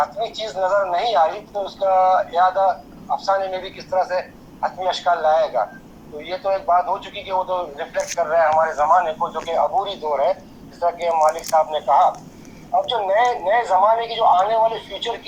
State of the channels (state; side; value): identical; both; correlation 1.00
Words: चीज़ नज़र नहीं आई तो उसका यादा अफसाने में भी किस तरह से हतमी अशकाल लाएगा। तो ये तो एक बात हो चुकी कि वो तो रिफ्लेक्ट कर रहा है हमारे ज़माने को, जो कि अबूरी दौर है, जिस तरह के मालिक साहब ने कहा। अब जो नए ज़माने की जो आने वाले फ्यूचर